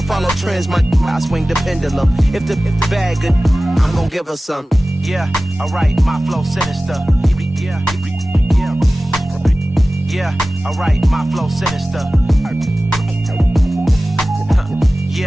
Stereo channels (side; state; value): both; normal; correlation 0.97